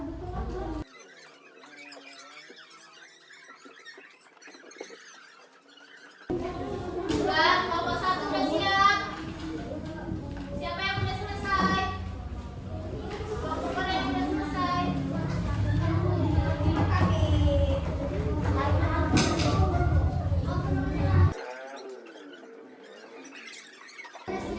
kelompok satu udah siap. Siapa yang udah selesai? Kelompok mana yang udah selesai?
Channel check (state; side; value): identical; both; correlation 1.00